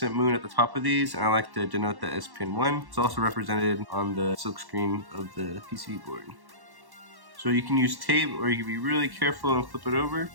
moon at the top of these, and I like to denote that as pin 1. It's also represented on the silk screen of the PCB board. So you can use tape, or you can be really careful and flip it over.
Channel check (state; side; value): late; left; 1.1 ms